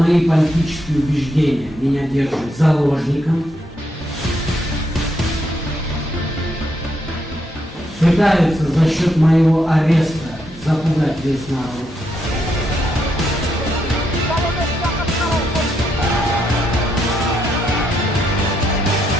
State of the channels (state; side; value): normal; both; correlation 0.78